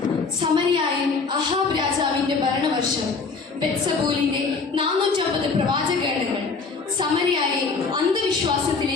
സമരിയായിൽ അഹാബ് രാജാവിന്റെ ഭരണവർഷം ബെത്സബൂലിന്റെ 450 പ്രവാചകഗണങ്ങൾ സമരിയായെ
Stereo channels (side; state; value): right; quieter; 4.5 dB